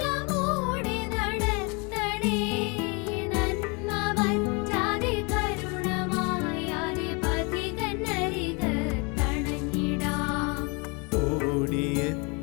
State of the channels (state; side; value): quieter; right; 31.0 dB